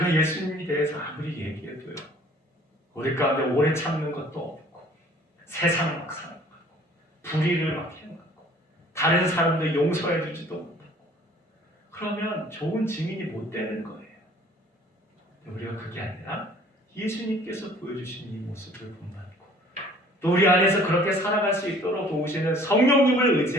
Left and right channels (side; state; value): both; normal; correlation 0.53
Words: 예수님에 대해서 아무리 얘기해도요, 우리 가운데 오래 참는 것도 없고 세상 막 살아가고 불의를 막 해가고 다른 사람들 용서해 주지도 못하고 그러면 좋은 증인이 못 되는 거예요. 우리가 그게 아니라 예수님께서 보여주신 이 모습을 본받고 또 우리 안에서 그렇게 살아갈 수 있도록 도우시는 성령님을